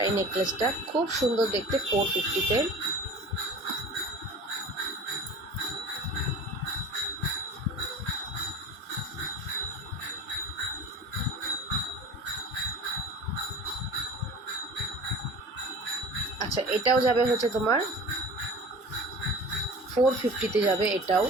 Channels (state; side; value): normal; both; correlation 0.38